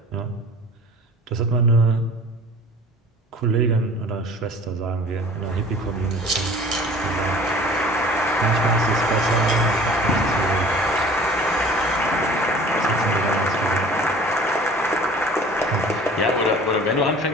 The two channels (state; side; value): normal; both; correlation 0.46